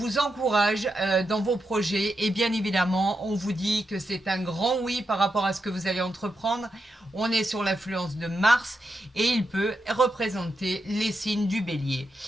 encourage dans vos projets et bien évidemment, on vous dit que c'est un grand oui par rapport à ce que vous allez entreprendre. On est sur l'influence de Mars et il peut représenter les signes du bélier.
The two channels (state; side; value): normal; both; correlation 0.86